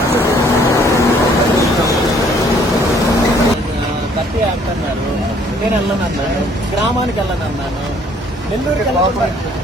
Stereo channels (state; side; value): normal; both; correlation 0.61